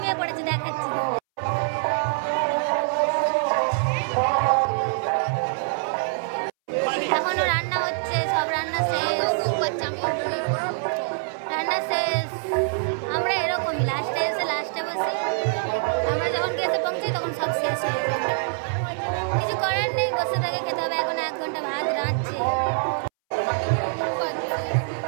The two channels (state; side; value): silent; left; 62 dB below the other